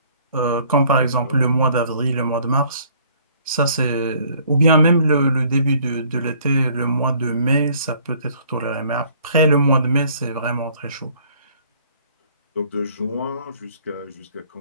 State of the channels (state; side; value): inverted; both; correlation -0.58